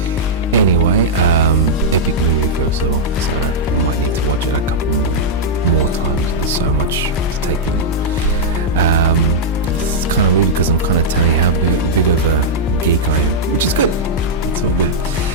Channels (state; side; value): normal; both; correlation -0.06